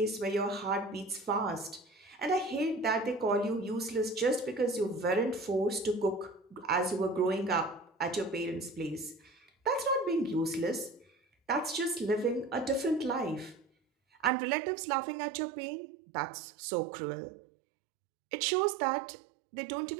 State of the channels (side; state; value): left; drops out; at 14.3 s